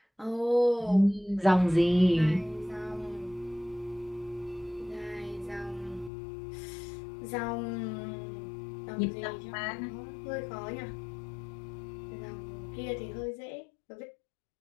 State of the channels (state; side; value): drops out; right; at 6.1 s